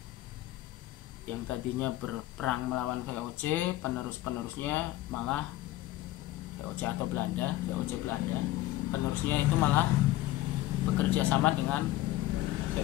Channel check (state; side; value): quieter; right; 15.9 dB